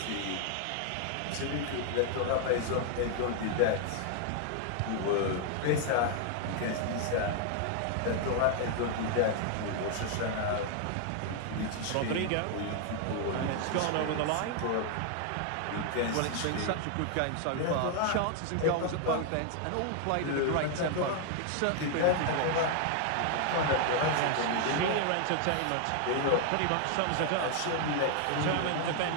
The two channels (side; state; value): both; different; correlation 0.00